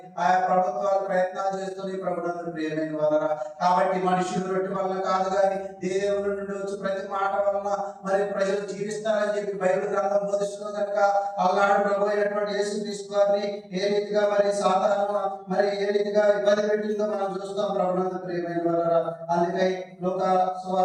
ఆయా ప్రభుత్వాలు ప్రయత్నాలు చేస్తుంది ప్రభునందు ప్రియమైన వారలారా. కాబట్టి మనుషులు రొట్టె వలన కాదు కానీ దేవుని నుండి వచ్చి ప్రతి మాట వలన మరి ప్రజలు జీవిస్తారని చెప్పి బైబిల్ గ్రంథం బోధిస్తుంది కనుక అలనాడు ప్రభు అయినటువంటి యేసుక్రీస్తు వారిని ఏ రీతిగా మరి సాతాను మరి ఏ రీతిగా ఇబ్బంది పెట్టిందో మనం చూస్తాం ప్రభునందు ప్రియమైన వారలారా. అందుకై లూకా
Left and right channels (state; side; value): identical; both; correlation 1.00